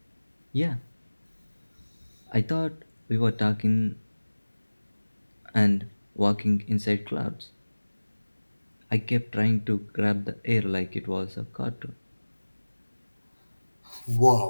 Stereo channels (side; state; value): both; inverted; correlation -1.00